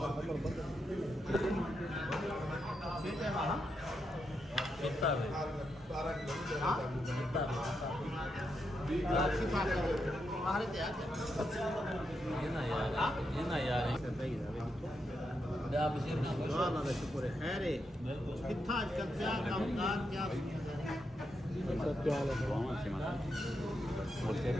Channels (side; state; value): both; normal; correlation 0.83